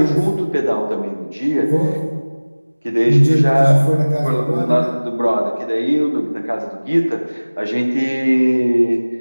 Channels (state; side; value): inverted; both; correlation -1.00